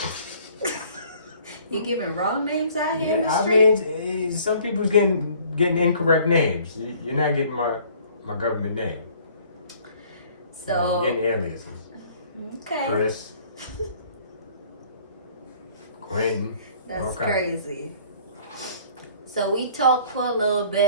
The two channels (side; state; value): both; inverted; correlation -0.55